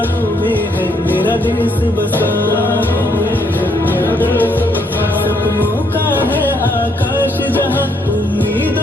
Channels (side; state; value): both; normal; correlation 0.72